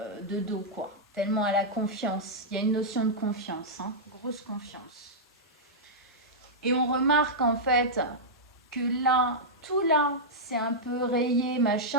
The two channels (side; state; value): both; normal; correlation -0.09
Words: de dos, quoi. Tellement elle a confiance. Il y a une notion de confiance, hein, grosse confiance. Et on remarque en fait que là, tout là, c'est un peu rayé,